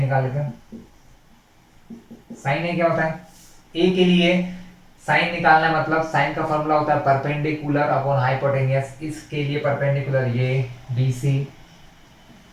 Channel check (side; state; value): both; identical; correlation 1.00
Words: लेते हैं। साइन ए क्या होता है, ए के लिए साइन निकालना है, मतलब साइन का फॉर्मूला होता है परपेंडिकुलर अपॉन हाइपोटेनियस। इसके लिए परपेंडिकुलर ये BC